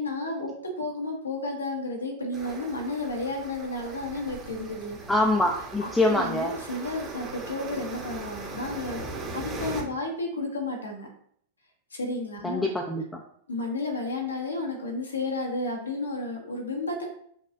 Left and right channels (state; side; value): normal; both; correlation 0.14